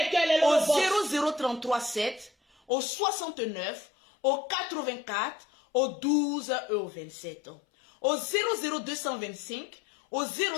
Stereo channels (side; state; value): right; drops out; at 2.7 s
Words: cœurs, les Lolo au 00337, au 69, au 84, au 12 et au 27. Au 00225, au